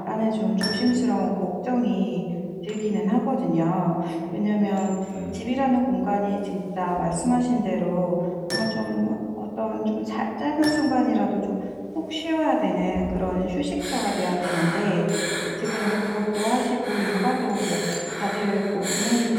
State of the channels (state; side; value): identical; both; correlation 1.00